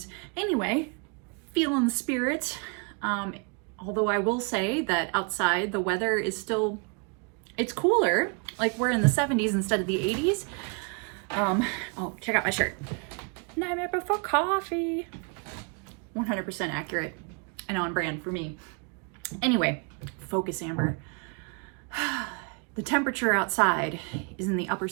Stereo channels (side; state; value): left; quieter; 36.1 dB